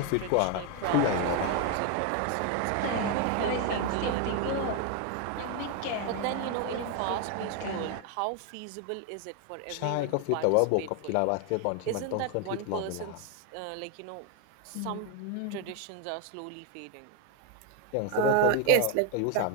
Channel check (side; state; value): both; different; correlation 0.01